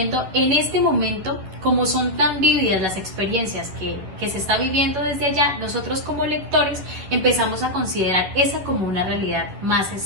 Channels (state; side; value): late; left; 11 ms